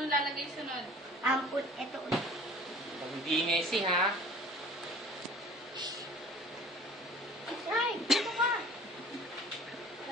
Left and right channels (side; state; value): both; normal; correlation 0.46